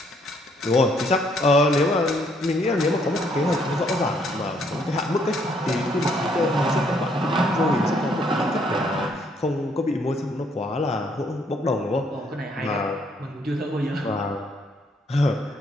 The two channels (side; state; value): both; normal; correlation 0.68